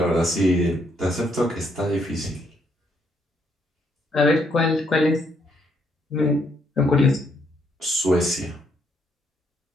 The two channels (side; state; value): both; normal; correlation 0.72